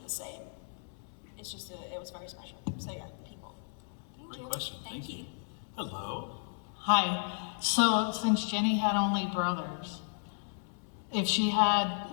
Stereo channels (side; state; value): right; silent; digital silence